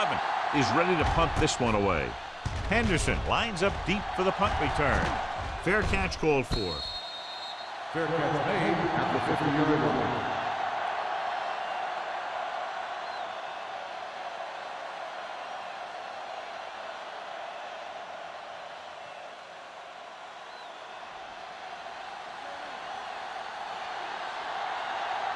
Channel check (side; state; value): both; identical; correlation 1.00